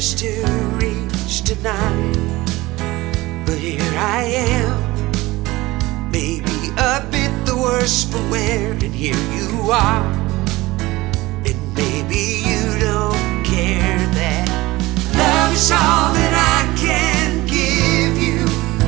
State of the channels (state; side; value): quieter; left; 19.7 dB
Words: to reach tonight, but here I am, maybe a bit the worse for wear, and here you are, and maybe you don't care that love is all that I can give you.